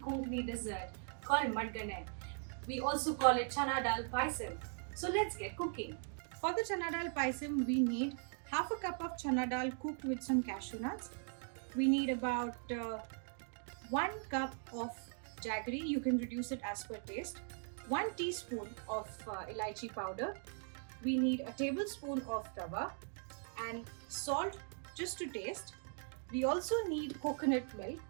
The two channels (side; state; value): left; silent; 51 dB below the other